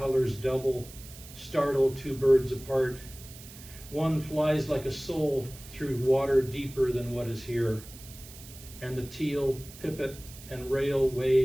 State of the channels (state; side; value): noise; right; hiss, 17 dB below the sound